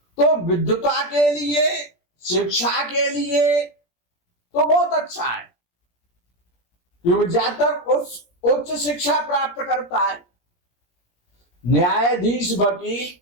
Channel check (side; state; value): right; late; 17 ms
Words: तो विद्वता के लिए, शिक्षा के लिए तो बहुत अच्छा है, क्योंकि जातक उच्च शिक्षा प्राप्त करता है, न्यायाधीश, वकील